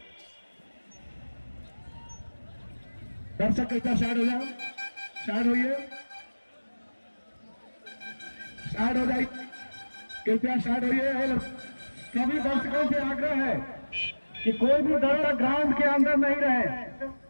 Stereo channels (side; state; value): both; inverted; correlation -1.00